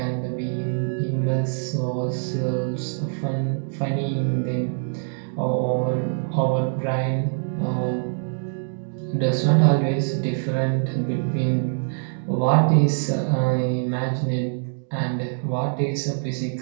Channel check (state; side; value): silent; left; digital silence